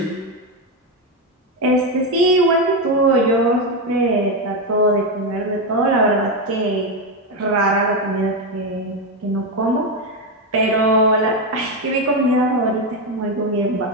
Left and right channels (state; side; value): normal; both; correlation 0.09